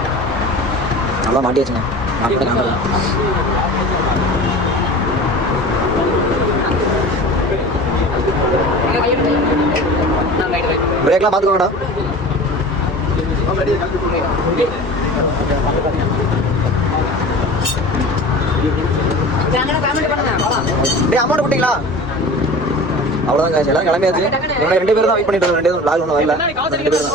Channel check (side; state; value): both; normal; correlation 0.37